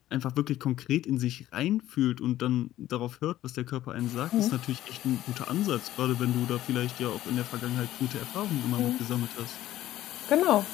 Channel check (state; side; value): quieter; right; 13.9 dB